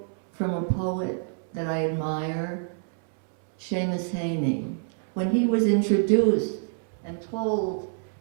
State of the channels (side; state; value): left; silent; 60 dB below the other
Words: from a poet that I admire, Seamus Heaney. When he was introduced and told